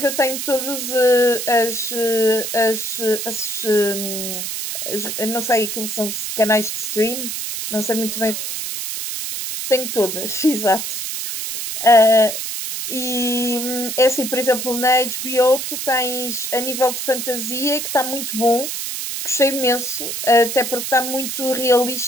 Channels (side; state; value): right; noise; hiss, 4 dB below the sound